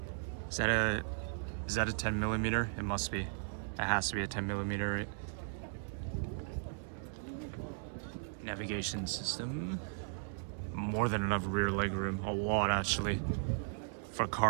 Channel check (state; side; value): silent; left; digital silence